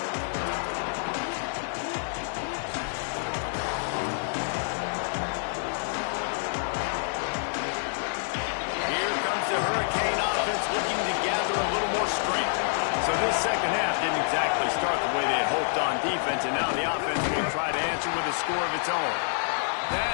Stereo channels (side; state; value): right; silent; 60 dB below the other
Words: Here comes the Hurricane offense looking to gather a little more strength. So this second half didn't exactly start the way they had hoped on defense, and now the offense will try to answer with a score of its own.